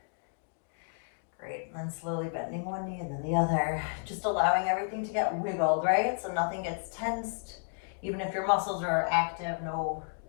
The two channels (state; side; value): silent; right; 57 dB below the other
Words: Great. And then slowly bending one knee and then the other. Just allowing everything to get wiggled, right? So nothing gets tensed. Even if your muscles are active, no